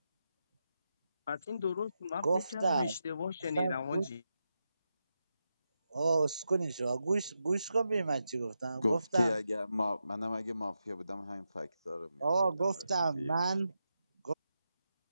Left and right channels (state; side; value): inverted; both; correlation -0.87